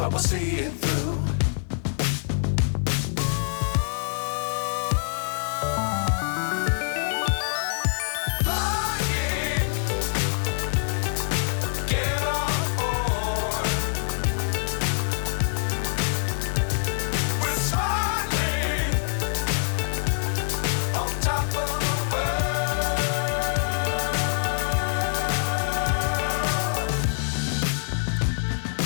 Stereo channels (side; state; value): right; silent; 62 dB below the other